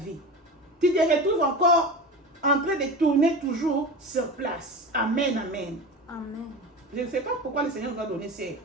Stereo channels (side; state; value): both; normal; correlation 0.29